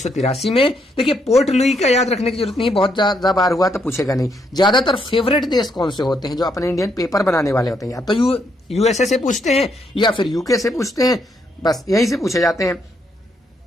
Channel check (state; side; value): normal; both; correlation 0.75